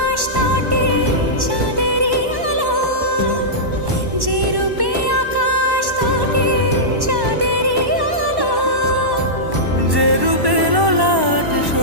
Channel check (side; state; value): left; late; 1.1 ms